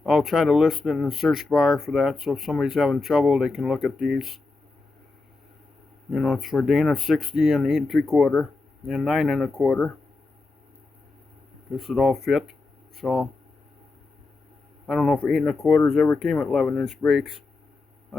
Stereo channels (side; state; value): right; quieter; 3.6 dB